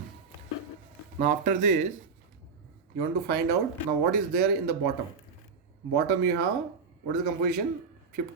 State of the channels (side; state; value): left; quieter; 5.1 dB